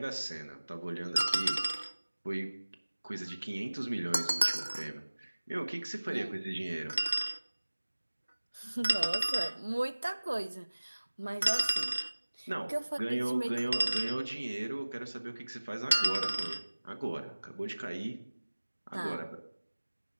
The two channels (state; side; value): inverted; both; correlation -1.00